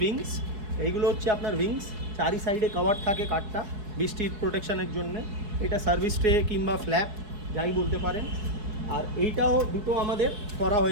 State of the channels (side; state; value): left; late; 4.7 ms